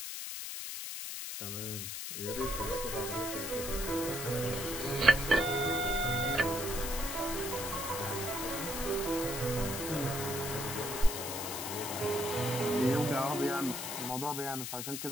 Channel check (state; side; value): noise; left; hiss, 5 dB below the sound